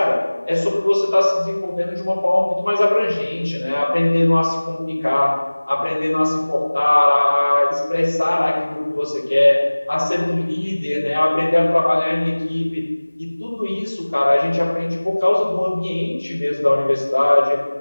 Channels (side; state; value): both; inverted; correlation -1.00